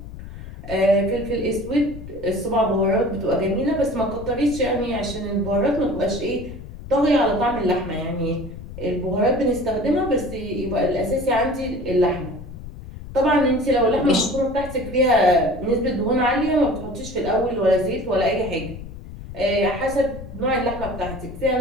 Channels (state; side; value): noise; left; rumble, 12 dB below the sound